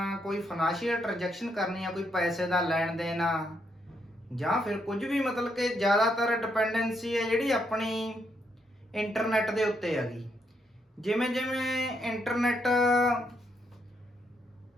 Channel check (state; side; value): normal; both; correlation 0.77